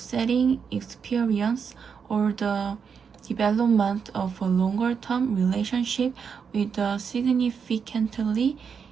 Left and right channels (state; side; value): quieter; left; 6.4 dB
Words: experience, or the development of a longer-term relationship with a significantly